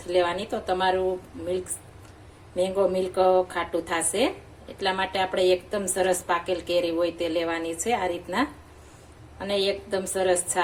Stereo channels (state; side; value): identical; both; correlation 1.00